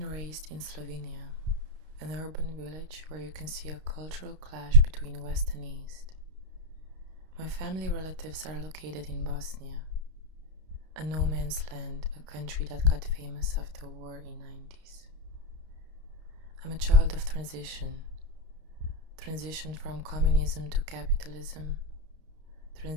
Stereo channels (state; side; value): late; left; 32 ms